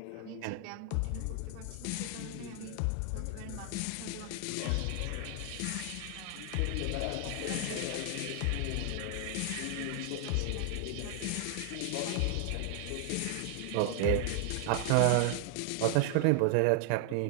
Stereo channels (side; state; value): both; different; correlation 0.00